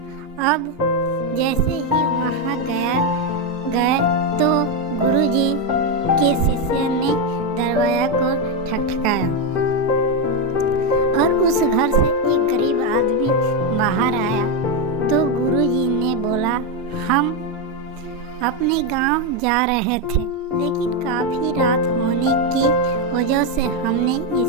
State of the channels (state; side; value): normal; both; correlation 0.06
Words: अब जैसे ही वहां गए तो गुरुजी के शिष्य ने दरवाजा को ठकठकाया और उस घर से एक गरीब आदमी बाहर आया। तो गुरुजी ने बोला, हम अपने गांव जा रहे थे, लेकिन काफी रात होने की वजह से हमने